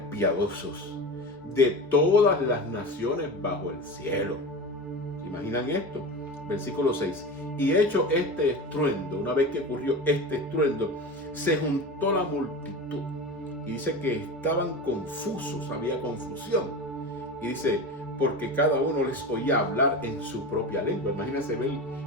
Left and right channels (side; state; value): both; normal; correlation 0.28